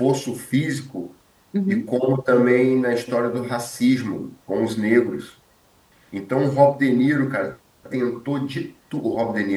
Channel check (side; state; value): both; identical; correlation 1.00